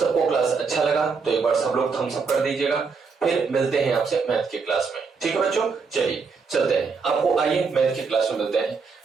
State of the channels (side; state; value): left; quieter; 5.0 dB